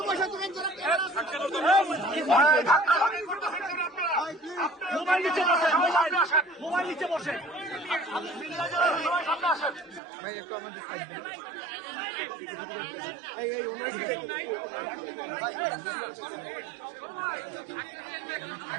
মোবাইল নিচে বসে, মোবাইল নিচে বসে।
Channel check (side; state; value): left; drops out; at 10.0 s